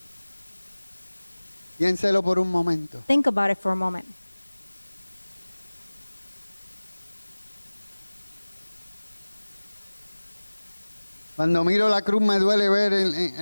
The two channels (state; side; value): inverted; both; correlation -1.00